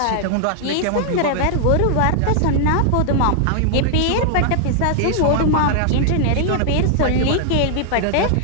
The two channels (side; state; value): both; different; correlation 0.00